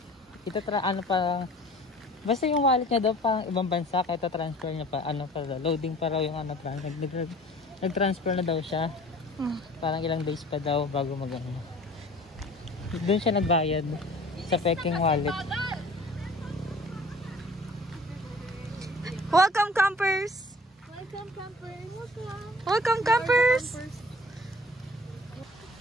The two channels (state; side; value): normal; both; correlation 0.48